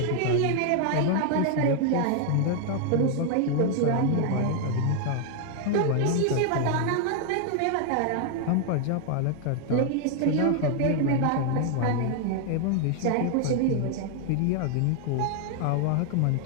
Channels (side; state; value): both; different; correlation 0.00